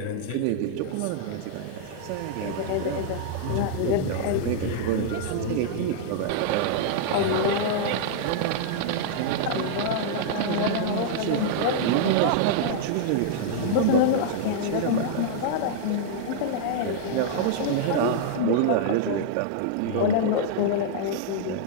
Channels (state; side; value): different; both; correlation -0.01